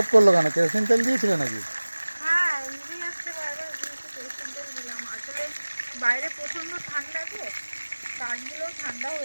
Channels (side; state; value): both; inverted; correlation -1.00